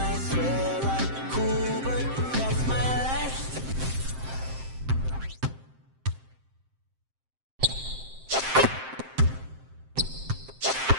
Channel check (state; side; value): late; left; 7.6 ms